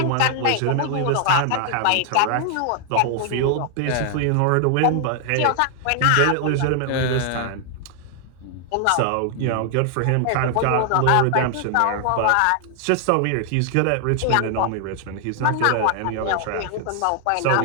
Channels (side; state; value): both; different; correlation 0.00